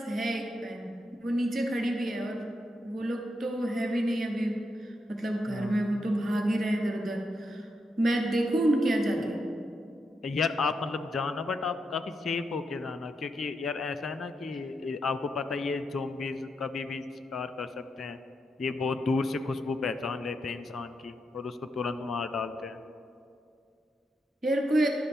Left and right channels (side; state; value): both; normal; correlation 0.83